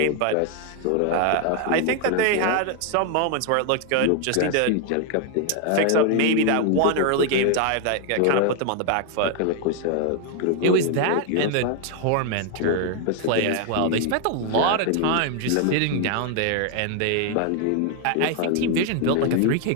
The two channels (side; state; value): both; different; correlation 0.00